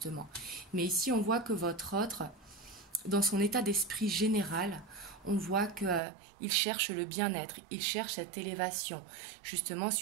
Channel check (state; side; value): drops out; left; at 6.0 s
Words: Mais ici, on voit que votre autre, dans son état d'esprit général, on voit qu'il cherche le bien-être, il cherche cette élévation, justement,